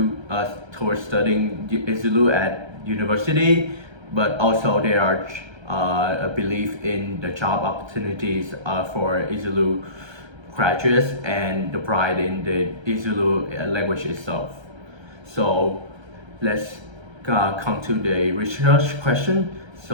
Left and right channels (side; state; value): left; late; 1.3 ms